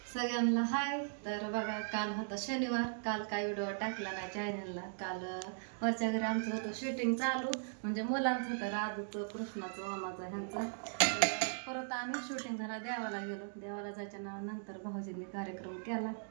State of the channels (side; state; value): left; silent; digital silence